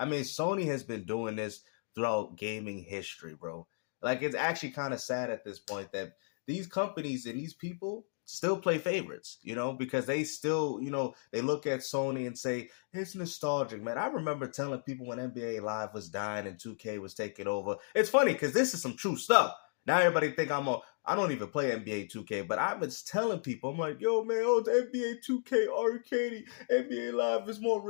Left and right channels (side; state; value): right; silent; digital silence